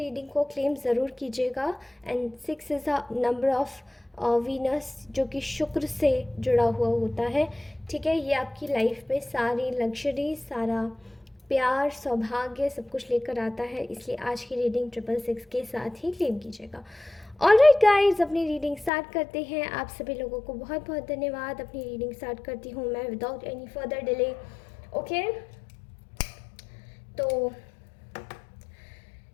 को क्लेम ज़रूर कीजिएगा। And 6 is a number of Venus, जो कि शुक्र से जुड़ा हुआ होता है, ठीक है। ये आपकी लाइफ में सारी लग्जरी, सारा प्यार, सौभाग्य सब कुछ लेकर आता है, इसलिए आज की रीडिंग 666 के साथ ही क्लेम कीजिएगा। ऑल राइट गाइज, अपनी रीडिंग स्टार्ट करते हैं। आप सभी लोगों को बहुत बहुत धन्यवाद। अपनी रीडिंग स्टार्ट करती हूँ मैं without any further delay. Okay, तो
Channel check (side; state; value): right; drops out; at 18.9 s